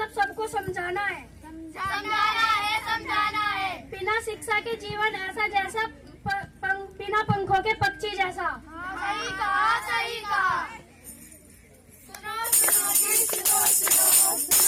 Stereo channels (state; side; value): identical; both; correlation 1.00